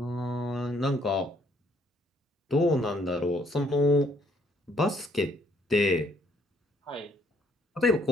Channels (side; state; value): both; normal; correlation 0.67